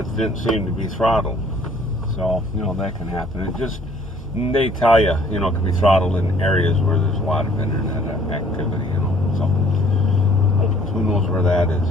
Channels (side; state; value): both; normal; correlation 0.58